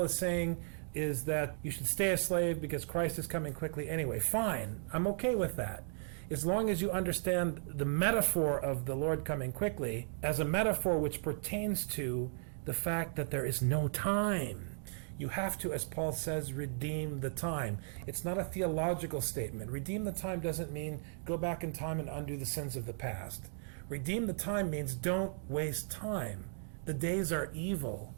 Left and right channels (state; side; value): silent; left; digital silence